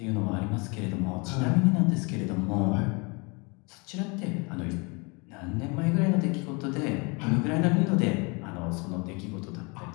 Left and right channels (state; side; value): quieter; right; 29.8 dB